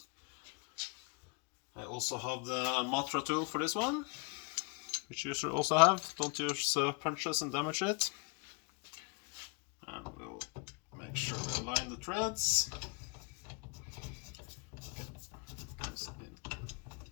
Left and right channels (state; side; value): quieter; right; 32.9 dB